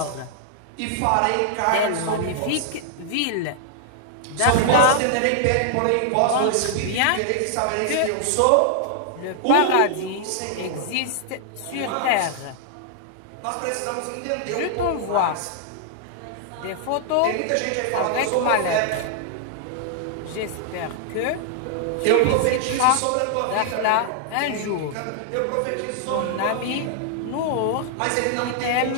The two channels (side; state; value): both; different; correlation -0.01